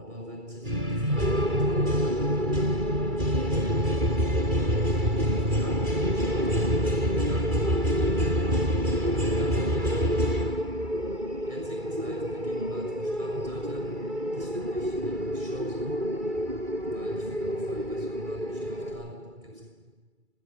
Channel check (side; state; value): left; late; 2.3 ms